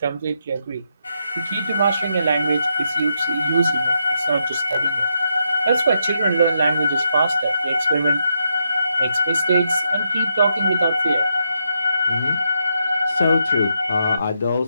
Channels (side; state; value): both; inverted; correlation -0.80